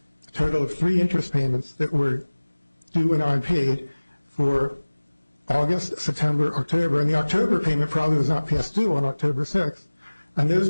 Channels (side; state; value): both; inverted; correlation -1.00